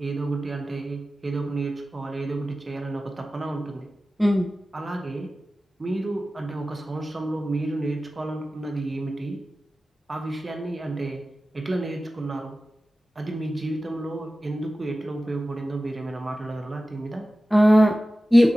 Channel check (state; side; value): normal; both; correlation 0.95